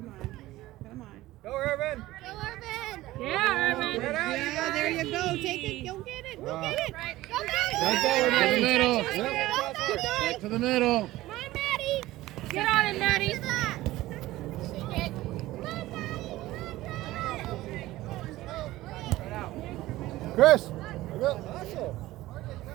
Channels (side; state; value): left; quieter; 16.9 dB